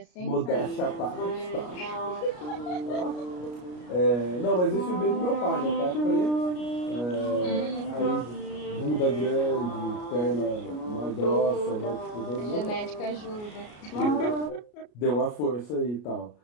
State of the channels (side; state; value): right; late; 33 ms